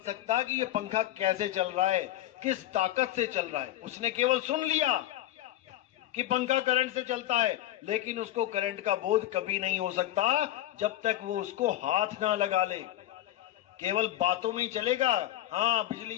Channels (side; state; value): right; quieter; 13.8 dB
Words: कि ये पंखा कैसे चल रहा है, किस ताकत से चल रहा है। उसने केवल सुन लिया, कि पंखा करंट से चलता है, लेकिन उसको करंट का बोध कभी नहीं हो सकता जब तक वो उसको हाथ ना लगा ले। केवल बातों में ही चलेगा, हाँ